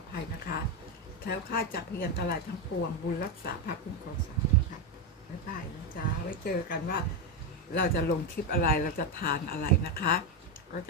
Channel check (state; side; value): normal; both; correlation 0.08